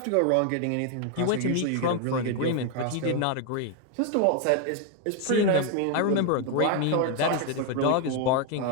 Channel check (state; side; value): different; both; correlation 0.01